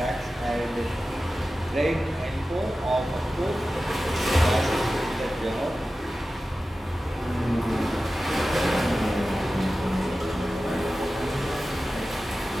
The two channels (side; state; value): both; normal; correlation 0.94